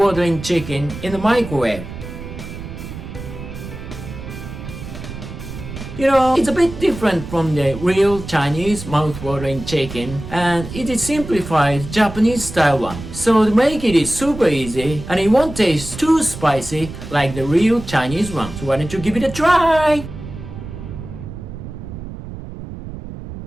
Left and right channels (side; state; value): right; noise; rumble, 11 dB below the sound